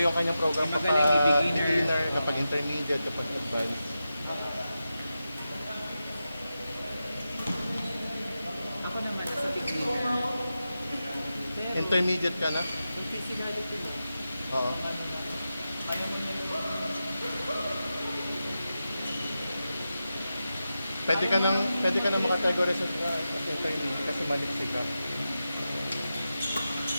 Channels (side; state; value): both; inverted; correlation -0.91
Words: kanyang program May kapag magaling, may beginner. beginner, kapag intermediate, kapag advanced. Ako naman nasa beginner. Pero, Intermediate ka na? yung physicality mo, Oo. Pwede ka nang makategorize sa intermediate kasi maliksi ka.